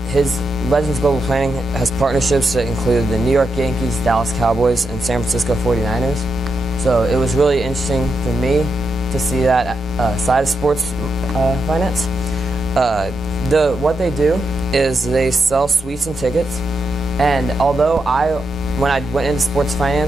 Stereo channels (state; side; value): normal; both; correlation 0.85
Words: His Legends Global Planning has partnerships that include the New York Yankees, Dallas Cowboys, and San Francisco 49ers. So it was really interesting for me to see that side of sports finance. What they do is they sell suites and tickets, and although when I went into sports